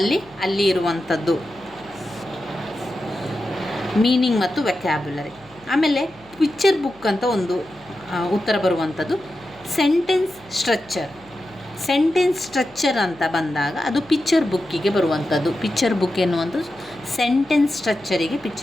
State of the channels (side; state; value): left; noise; hum, 27 dB below the sound